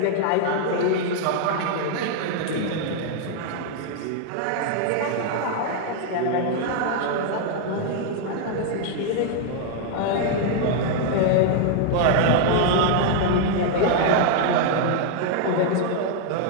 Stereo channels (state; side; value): different; both; correlation 0.00